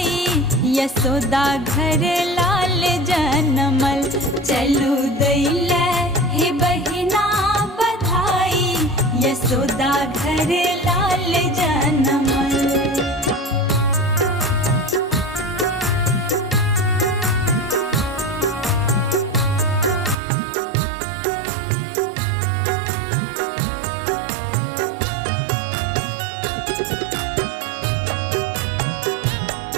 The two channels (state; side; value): drops out; left; at 20.2 s